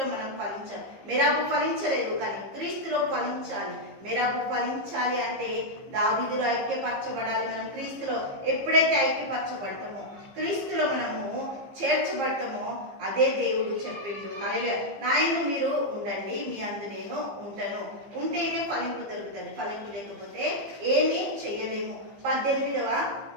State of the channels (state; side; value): late; left; 15 ms